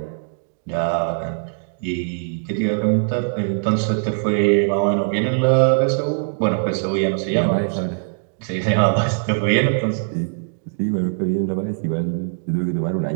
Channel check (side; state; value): left; silent; digital silence